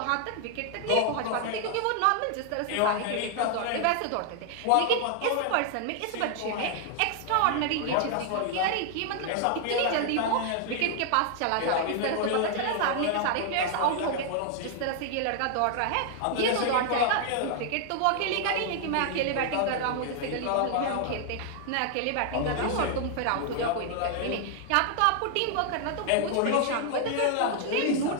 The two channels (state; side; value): different; both; correlation 0.00